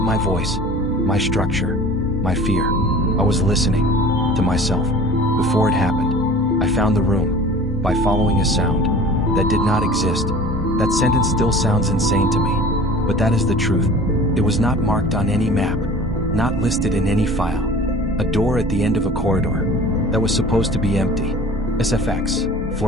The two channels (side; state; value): both; normal; correlation 0.42